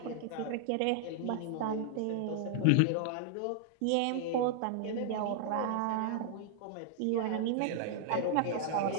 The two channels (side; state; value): both; different; correlation 0.00